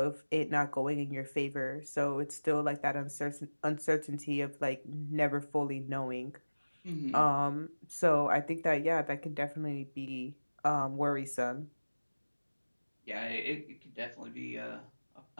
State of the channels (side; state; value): both; inverted; correlation -1.00